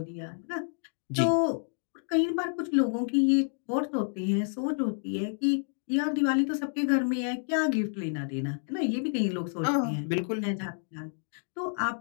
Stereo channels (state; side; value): silent; right; digital silence